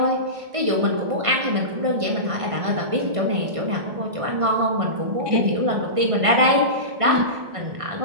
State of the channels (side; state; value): left; late; 1.5 ms